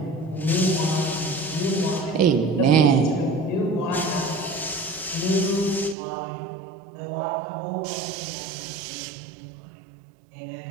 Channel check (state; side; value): drops out; left; at 6.0 s